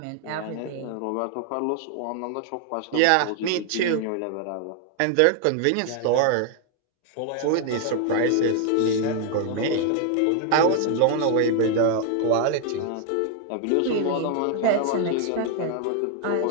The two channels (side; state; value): both; different; correlation 0.00